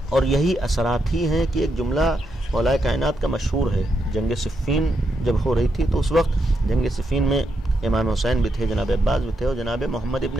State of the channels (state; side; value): normal; both; correlation 0.81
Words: اور یہی اثرات ہی ہیں کہ ایک جملہ مولا کائنات کا مشہور ہے. جنگ صفین جب ہو رہی تھی تو اس وقت جنگ صفین میں امام حسین بھی تھے، جناب عباس بھی تھے، اور جناب محمد ابن